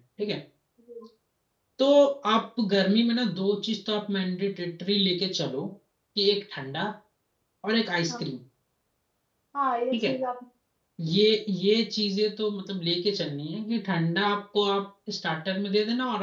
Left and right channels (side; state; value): both; identical; correlation 1.00